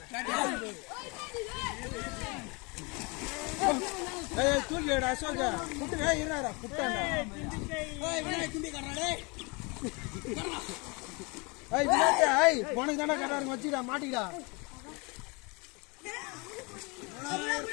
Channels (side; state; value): right; quieter; 29.2 dB